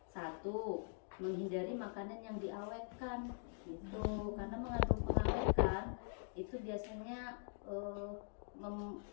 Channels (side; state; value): right; silent; digital silence